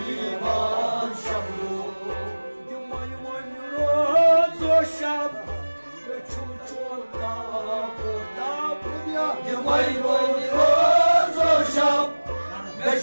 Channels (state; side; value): inverted; both; correlation -1.00